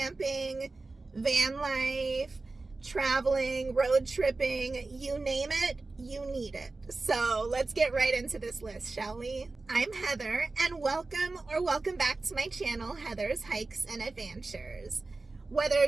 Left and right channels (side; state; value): left; quieter; 3.5 dB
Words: van life, traveling, road tripping, you name it, you need it. So let's get right into this list, shall we? I'm Heather, and welcome back to my channel, Heather's Hikes and Adventures. Whether